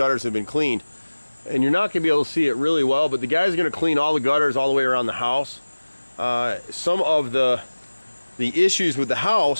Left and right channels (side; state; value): both; inverted; correlation -1.00